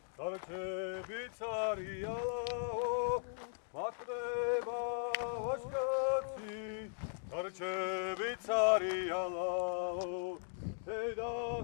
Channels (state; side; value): silent; right; digital silence